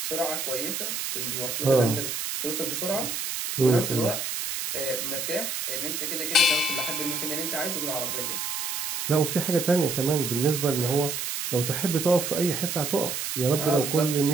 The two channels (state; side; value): noise; right; hiss, 3 dB below the sound